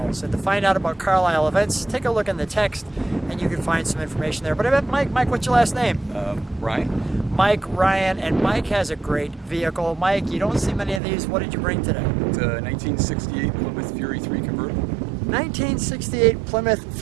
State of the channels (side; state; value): left; drops out; at 11.0 s